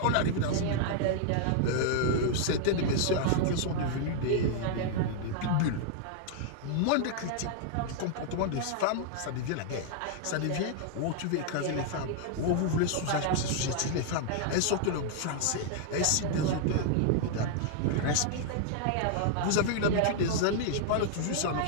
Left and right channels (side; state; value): both; different; correlation -0.01